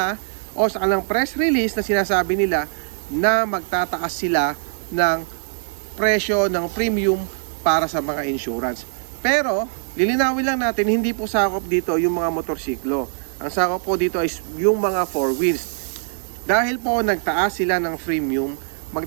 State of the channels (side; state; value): left; silent; 59 dB below the other